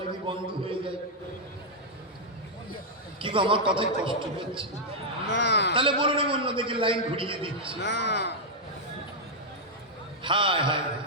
যদি বন্ধ হয়ে যায়। কি গো, আমার কথায় কষ্ট হচ্ছে? তাহলে বলুন আমি অন্যদিকে লাইন ঘুরিয়ে দিচ্ছি। হায় হায়।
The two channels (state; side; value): normal; both; correlation -0.05